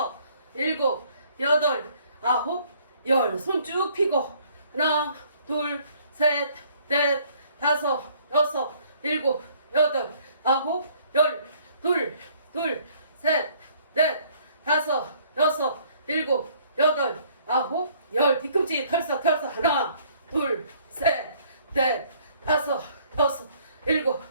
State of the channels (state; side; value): inverted; both; correlation -0.61